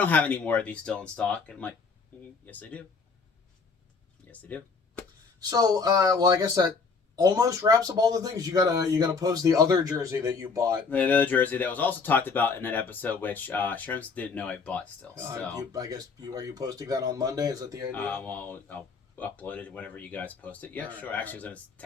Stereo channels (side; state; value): right; quieter; 4.8 dB